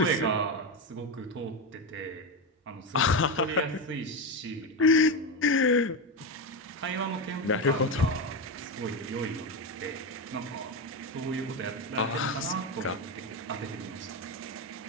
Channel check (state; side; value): normal; both; correlation 0.14